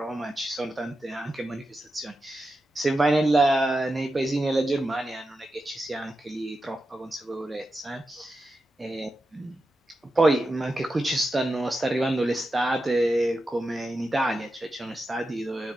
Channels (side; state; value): both; normal; correlation 0.90